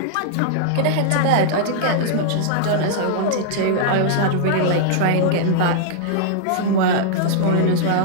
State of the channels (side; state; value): both; different; correlation -0.01